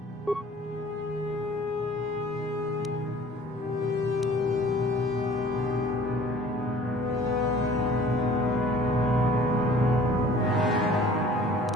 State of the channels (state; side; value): normal; both; correlation 0.49